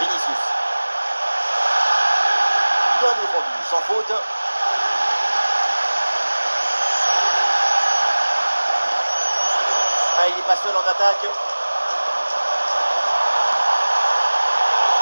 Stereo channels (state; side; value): inverted; both; correlation -1.00